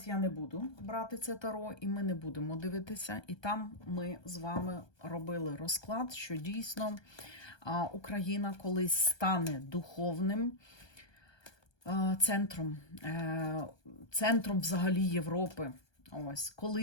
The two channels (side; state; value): right; late; 1.2 ms